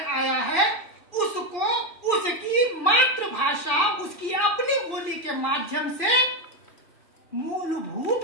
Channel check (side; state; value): right; late; 2.5 ms